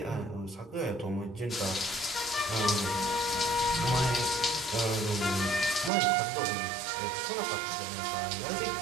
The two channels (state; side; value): drops out; left; at 5.9 s